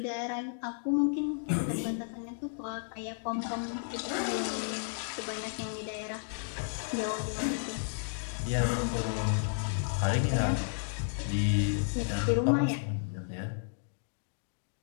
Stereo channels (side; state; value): right; silent; digital silence